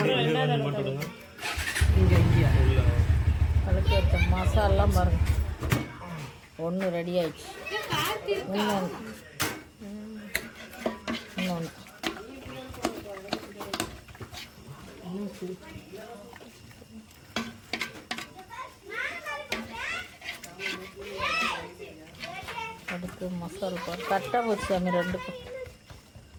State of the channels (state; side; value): identical; both; correlation 1.00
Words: அதுக்கு மசாலாம் பாருங்க. 1 ரெடி ஆயிடுச்சு. இன்னொன்று அடுத்து மசாலா பாரு. கரெக்டாக போச்சு சாமி. 2க்கும்